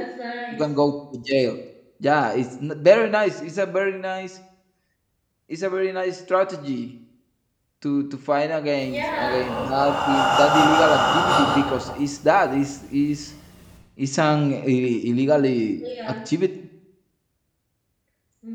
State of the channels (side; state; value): both; identical; correlation 1.00